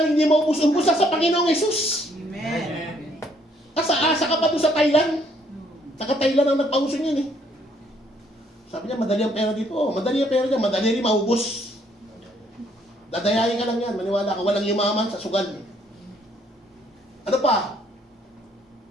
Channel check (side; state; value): both; normal; correlation 0.66